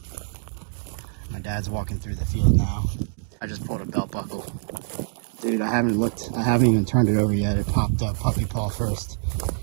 My dad's walking through the field now. I just pulled a belt buckle. Dude, I haven't even turned it over yet. It popped up puppy paw first.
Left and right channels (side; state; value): left; silent; digital silence